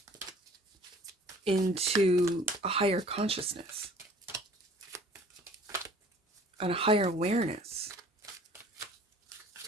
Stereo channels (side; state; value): both; normal; correlation 0.51